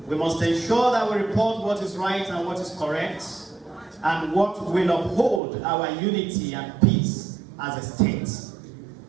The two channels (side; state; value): left; drops out; at 5.4 s